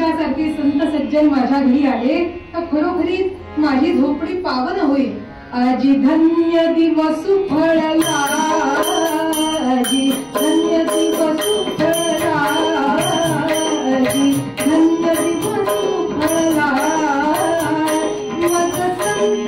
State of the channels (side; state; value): both; identical; correlation 1.00